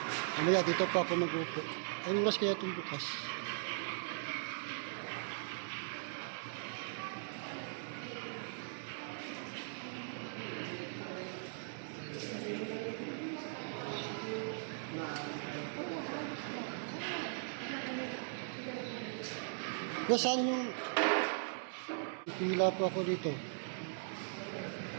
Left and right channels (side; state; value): left; silent; digital silence